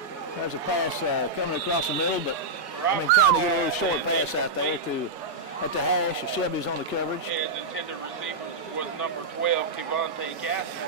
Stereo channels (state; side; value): quieter; left; 3.1 dB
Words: There's a pass coming across the middle, but trying to get a little short pass out there at the hash. Shelby's on the coverage. And the intended receiver was number 12, Devontae